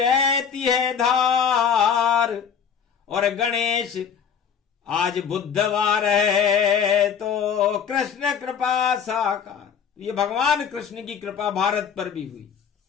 है धार। और गणेश आज बुधवार है तो कृष्ण कृपा साकार। ये भगवान कृष्ण की कृपा भारत पर भी हुई,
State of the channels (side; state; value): right; quieter; 7.4 dB